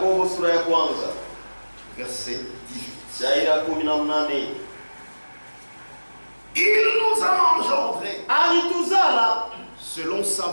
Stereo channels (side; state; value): both; inverted; correlation -1.00